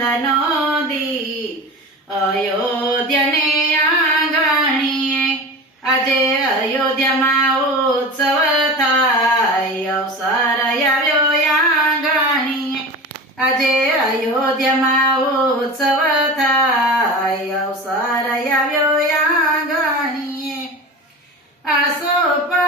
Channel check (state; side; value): normal; both; correlation 0.31